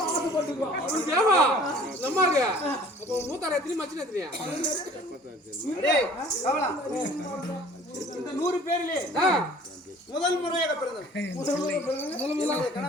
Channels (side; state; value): both; normal; correlation 0.50